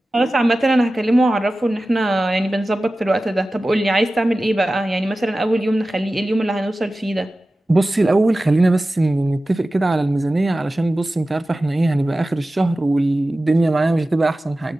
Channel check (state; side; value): normal; both; correlation 0.96